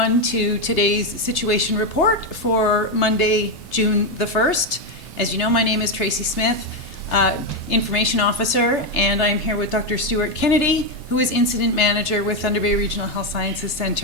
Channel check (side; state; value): both; normal; correlation 0.06